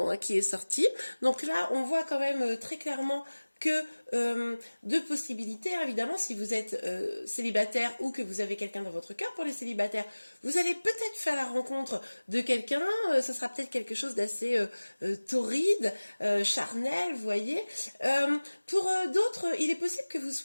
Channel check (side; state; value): both; inverted; correlation -1.00